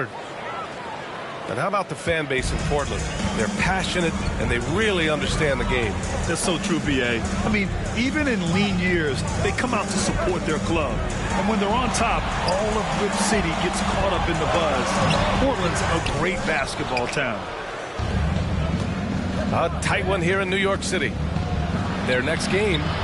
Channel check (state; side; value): identical; both; correlation 1.00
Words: And how about the fan base in Portland? They're passionate and they really understand the game. That's so true, B.A. I mean, even in lean years, they come out to support their club. And when they're on top, all of Rip City gets caught up in the buzz. Portland's a great basketball town. A tight one here in New York City. Their next game